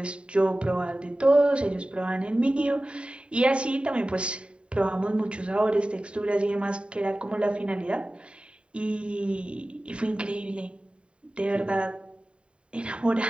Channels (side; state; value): left; late; 0.055 ms